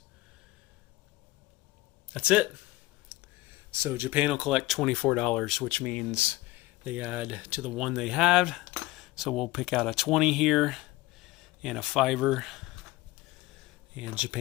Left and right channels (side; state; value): right; quieter; 19.3 dB